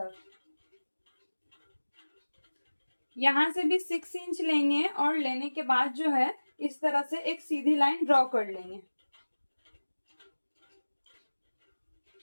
यहाँ से भी 6 इंच लेंगे और लेने के बाद जो है इस तरह से एक सीधी लाइन ड्रॉ कर लेंगे।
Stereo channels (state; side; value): inverted; both; correlation -1.00